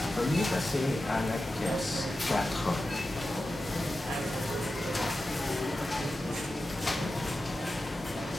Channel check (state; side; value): normal; both; correlation 0.92